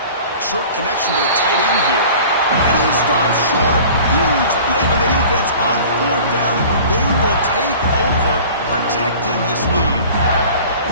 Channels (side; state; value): both; inverted; correlation -0.43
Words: Short connection to the tight end here. And he stops short. Huge play by the defense on fourth down. They will take over, protecting this lead.